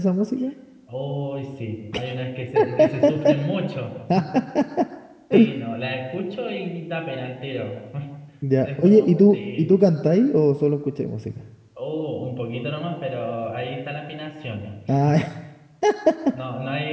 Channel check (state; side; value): identical; both; correlation 1.00